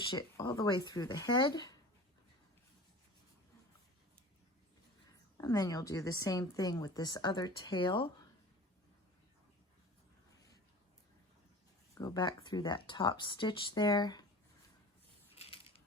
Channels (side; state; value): both; normal; correlation 0.39